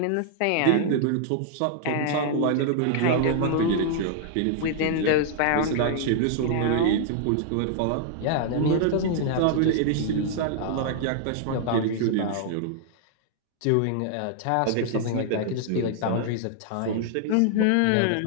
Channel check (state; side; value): different; both; correlation -0.01